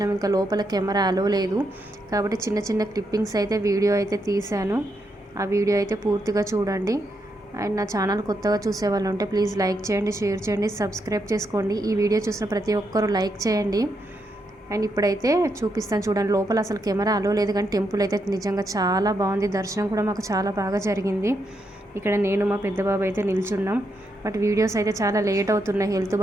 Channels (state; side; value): normal; both; correlation 0.81